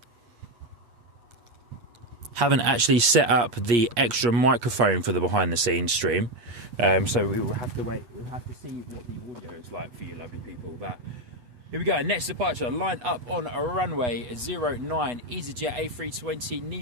Haven't actually set up the extra microphone for the behind the scenes stream, so we will have to wait. We'll have to see what the audio is like for you lovely people. But here we go, next departure lined up on a runway 09 EasyJet A320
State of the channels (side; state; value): left; late; 8.2 ms